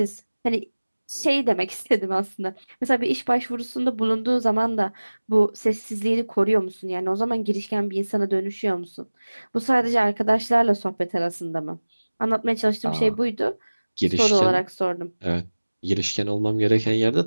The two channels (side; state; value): both; inverted; correlation -1.00